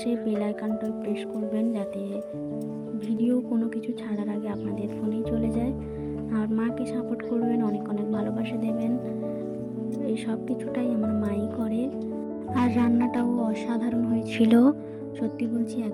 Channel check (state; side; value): identical; both; correlation 1.00